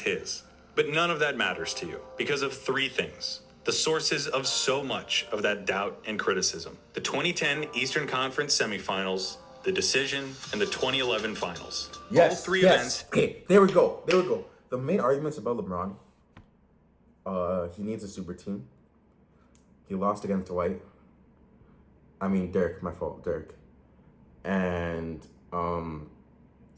But none of that matters to you because of 3 things. The sources of so much of that doubt and criticism. The 2010 Eastern Conference semifinals, the decision, and the 2011 finals. Yes, All 3 yes. events. Okay, there we go. The main arguments about LeBron, he needs a super team. He lost against Dirk. My fault, Dirk. And,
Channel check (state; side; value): identical; both; correlation 1.00